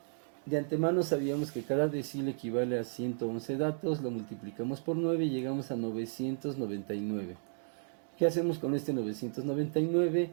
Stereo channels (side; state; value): left; silent; digital silence